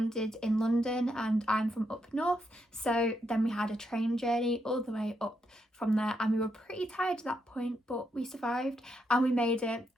in London, and I'm from up north, so then we had a train journey all the way up from there, and we were pretty tired at that point, but we survived and we made it,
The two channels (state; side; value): normal; both; correlation 0.80